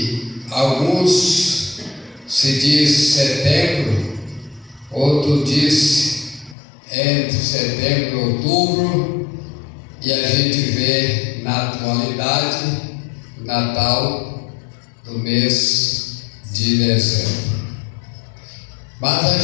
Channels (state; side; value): drops out; right; at 6.6 s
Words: alguns se diz setembro, outro diz entre setembro e outubro, e a gente vê na atualidade o Natal do mês de dezembro. Mas a